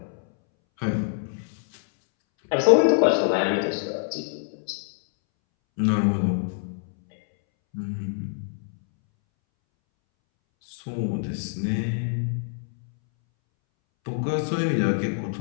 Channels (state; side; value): silent; right; 62 dB below the other